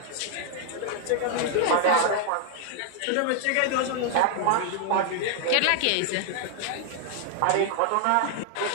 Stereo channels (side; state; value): both; different; correlation 0.00